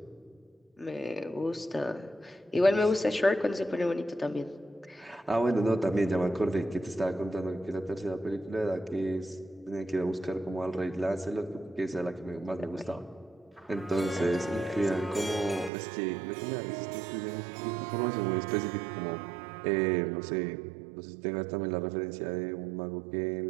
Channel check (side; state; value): left; drops out; at 15.7 s